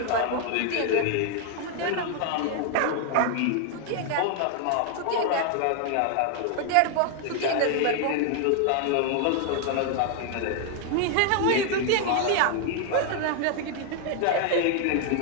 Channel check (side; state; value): both; different; correlation 0.00